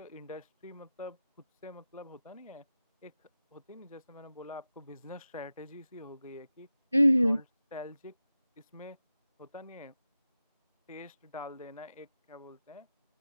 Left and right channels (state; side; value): inverted; both; correlation -0.94